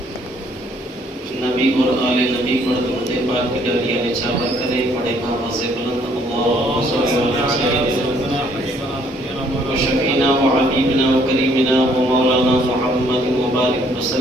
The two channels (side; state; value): both; normal; correlation 0.64